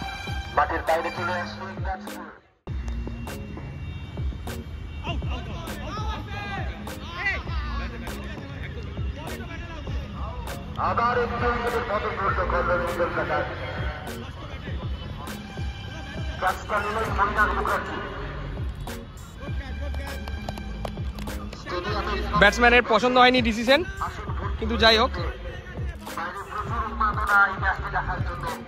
মাঠের বাইরে চলে আসছে। আবার একটু পতন ঘটল কল্যাণী কলকাতার। ক্যাচটা নিলেন মনিরাজ মুখার্জি। ব্যাটসম্যানের পছন্দ হয়নি ডিসিশন, কিন্তু যাই হোক।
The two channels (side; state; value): both; identical; correlation 1.00